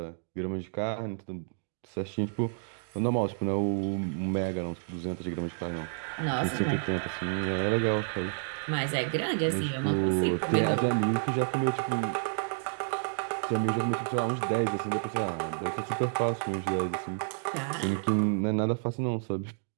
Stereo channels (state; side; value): silent; left; digital silence